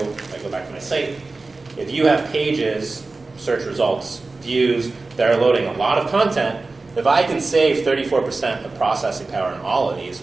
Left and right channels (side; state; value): left; quieter; 3.6 dB